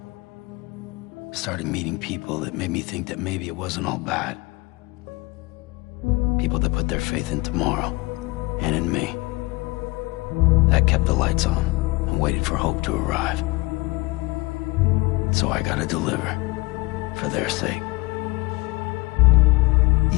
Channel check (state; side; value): quieter; right; 23.3 dB